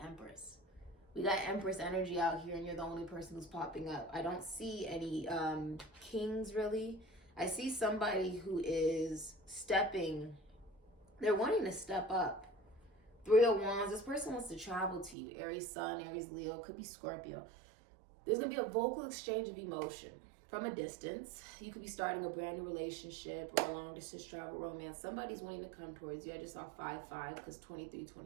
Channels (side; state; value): left; drops out; at 15.2 s